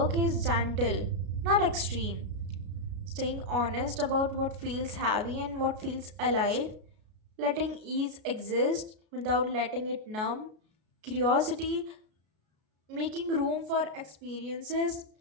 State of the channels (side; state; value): left; late; 33 ms